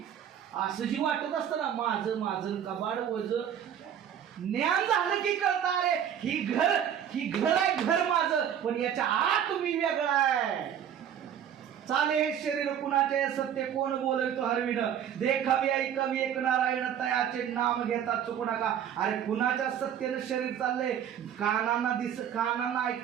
असं जी वाटत असतं ना माझं माझं कबाड वज ज्ञान झालं की कळतं अरे ही घर आहे घर माझं पण याच्या आत मी वेगळा आहे. चाले हे शरीर कुणाचे सत्य कोण बोलतो हरविण देखावी ऐकावी एक नारायण तयाचे नाम घेता चुकू नका. अरे कुणाच्या सत्यानं शरीर चाललंय? कानांना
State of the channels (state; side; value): quieter; left; 9.3 dB